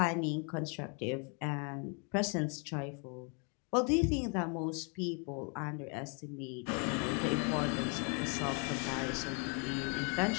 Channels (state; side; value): quieter; right; 36.8 dB